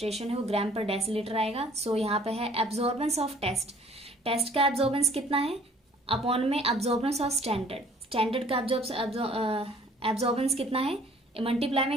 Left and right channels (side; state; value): both; normal; correlation 0.55